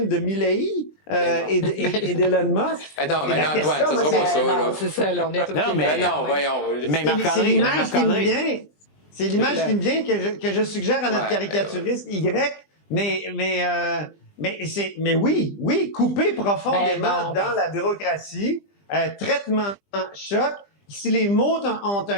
de Milley et d'Elon Musk? Non, mais non, Antoine, ça sera pas ça. Non, c'est ça, là, on est Non, mais non, voyons. Mais c'est l'image qui me vient. C'est l'image qui me vient que je suggère à notre caricaturiste Y. Mais oui, couper profondément dans la bureaucratie, traitement choc. Si les mots ont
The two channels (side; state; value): right; late; 20 ms